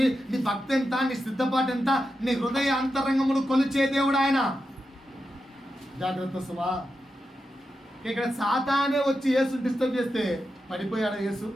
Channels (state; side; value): normal; both; correlation 0.89